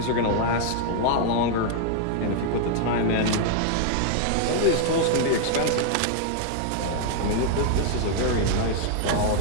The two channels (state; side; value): different; both; correlation 0.00